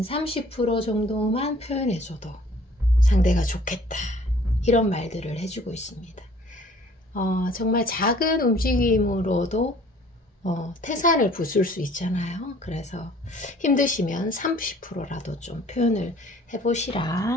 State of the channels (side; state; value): both; normal; correlation 0.54